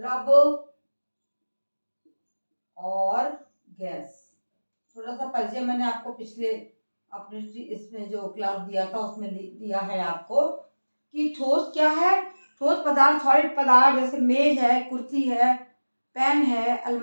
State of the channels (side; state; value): both; inverted; correlation -1.00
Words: और गैस। थोड़ा सा परिचय मैंने आपको पिछले अपने इसमें जो क्लास दिया था उसमें दिया है आपको कि ठोस क्या है। ठोस पदार्थ, सॉलिड पदार्थ जैसे मेज है, कुर्सी है, पेन है,